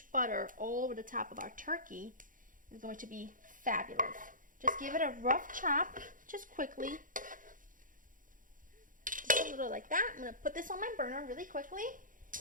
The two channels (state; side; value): late; left; 0.39 ms